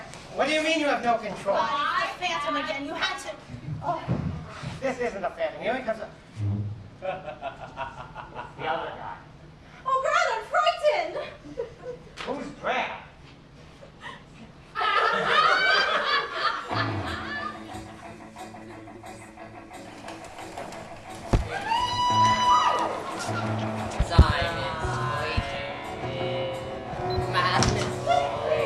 What do you mean you have no control? I Phantom again. You had to. Oh, This isn't a phantom. Here he comes. The other guy. oh God, I'm frightened. Who's Brad?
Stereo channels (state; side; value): identical; both; correlation 1.00